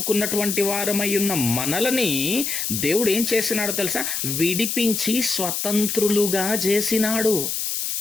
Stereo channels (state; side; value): noise; left; hiss, 2 dB below the sound